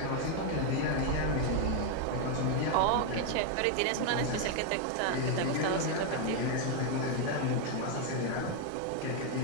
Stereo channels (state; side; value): different; both; correlation 0.01